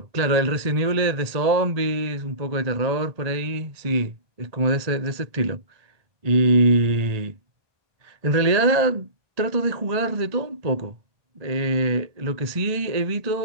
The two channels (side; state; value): left; late; 1.8 ms